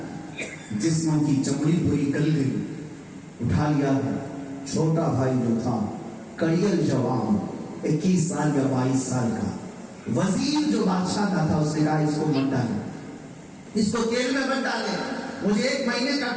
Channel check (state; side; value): identical; both; correlation 1.00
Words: جسموں کی چمڑی پوری گل گئی۔ اٹھا لیا ہے چھوٹا بھائی جو تھا، کڑیل جوان، 21 سال یا 22 سال کا وزیر جو بادشاہ کا تھا، اس نے کہا اس کو مت ڈالے، اس کو تیل میں مت ڈالے، مجھے 1 مہینے کا